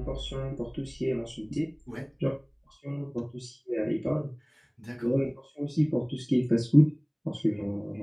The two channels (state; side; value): identical; both; correlation 1.00